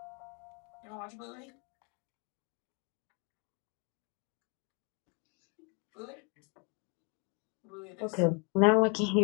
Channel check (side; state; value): right; quieter; 34.9 dB